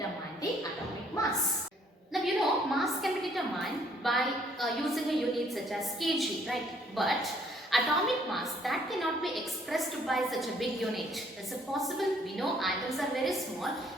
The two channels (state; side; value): normal; both; correlation 0.64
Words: the atomic mass. Now you know, mass can be determined by using a unit such as kg, right? But atomic mass, that cannot be expressed by such a big unit. Is it possible? We know atoms are very small.